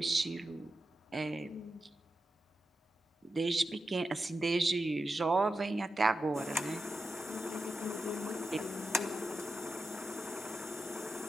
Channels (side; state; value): both; normal; correlation 0.89